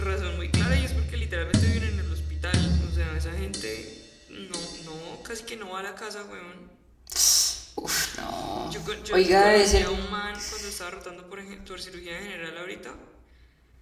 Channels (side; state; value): both; identical; correlation 1.00